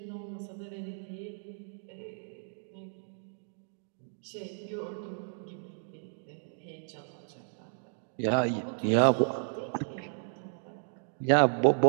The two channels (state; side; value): silent; left; digital silence